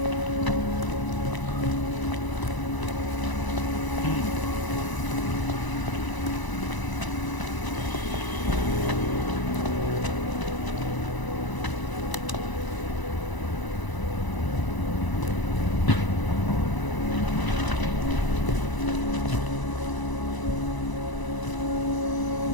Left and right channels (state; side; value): late; right; 1.0 ms